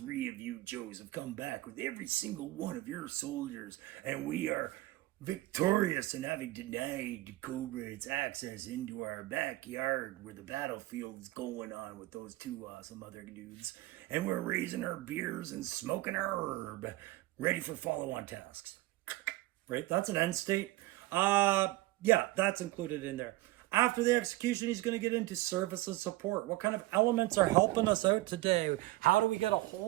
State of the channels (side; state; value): left; quieter; 18.6 dB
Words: of you Joes have come back with every single one of your soldiers, and we are victorious in having denied Cobra its access into our backyard where the battlefield's going on with those two awesome other dudes. And we're raising our beers and smoking our herb, ready for follow-on tasks. Right? That's an end state. Yeah, that's included in there. After the execution, he's going to get into service and support. What kind of elements are helping us out today? How do we get a